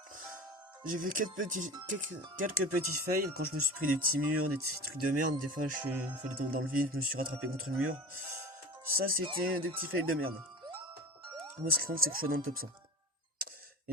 J'ai fait quelques petits fails quand je me suis pris des petits murs, des petits trucs de merde. Des fois, je suis dans le vide, je me suis rattrapé contre le mur. Ça, c'était des petits fails de merde. Moi, ce qui compte, c'est que je sois dans le top 100.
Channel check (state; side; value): normal; both; correlation 0.33